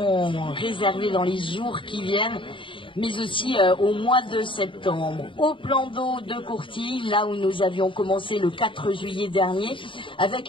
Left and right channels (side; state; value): right; late; 0.25 ms